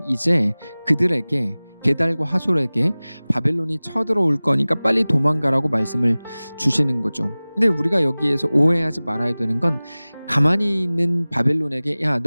이제 그들에게 게달과 하솔에게 바벨론이 쳐들어올 거니까 빨리 도망가라고 말씀을 주시는 거죠. 근데 우리가 여기에서 오해하지 말아야 되는 건 가만히 있는 바벨론에게 야,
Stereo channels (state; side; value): inverted; both; correlation -0.99